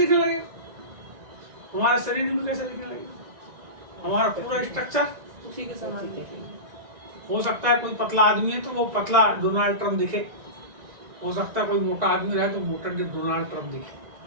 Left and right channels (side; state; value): left; late; 1.9 ms